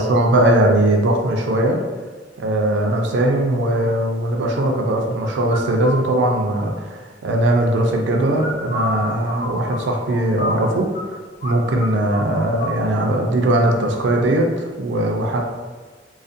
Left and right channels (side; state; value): both; normal; correlation 0.43